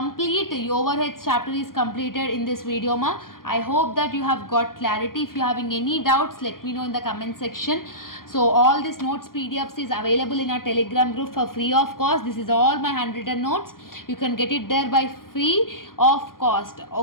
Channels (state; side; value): late; right; 0.91 ms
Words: overheads chapter is completed in this video ma. I hope that you have got clarity. If you are having any doubts, let me know in the comment section. So all these notes PDFs is available in our Telegram group for free of cost. This is all my handwritten notes. You can get it there by free of cost.